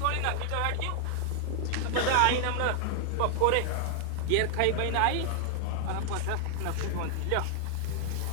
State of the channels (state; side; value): different; both; correlation -0.01